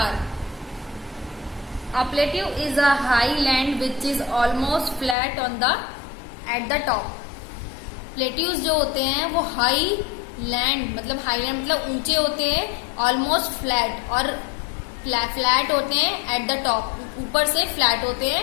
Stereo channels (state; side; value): drops out; right; at 5.2 s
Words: A plateau is a high land which is almost flat on the at the top. Plateaus जो होते हैं वो हाई लैंड मतलब ऊंचे होते हैं, ऑलमोस्ट फ्लैट और फ्लैट होते हैं एट द टॉप, ऊपर से फ्लैट होते